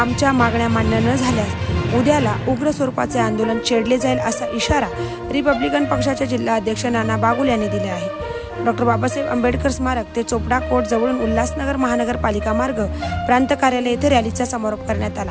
मागण्या मान्य न झाल्यास उद्याला उग्र स्वरूपाचे आंदोलन छेडले जाईल असा इशारा रिपब्लिकन पक्षाचे जिल्हा अध्यक्ष नाना बागुल यांनी दिला आहे। डॉक्टर बाबासाहेब आंबेडकर स्मारक ते चोपडा कोर्ट जवळून उल्हासनगर महानगरपालिका मार्ग प्रांत कार्यालय येथे रॅलीचा समारोप करण्यात आला।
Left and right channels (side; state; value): both; identical; correlation 1.00